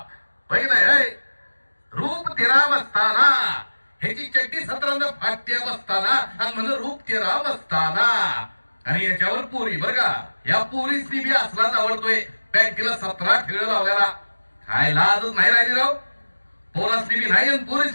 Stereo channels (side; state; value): both; inverted; correlation -1.00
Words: पहिलं रूप तेरा बसताना, ह्याची चड्डी 17 फाट्या बसताना आणि म्हणलं रूप तेरा बसताना. आणि याच्यावर पोरी बर का, या पोरीसनी बी असलाच आवडतोय. पॅन्टीला 17 ठेळ लावल्याला. काय लाजच नाही राहिली राव. पोरासनी बी नाही आणि